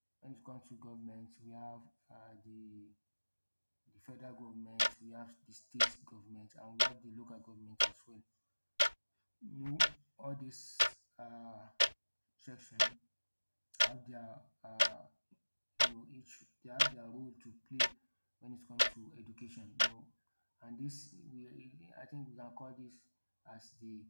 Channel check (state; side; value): inverted; both; correlation -1.00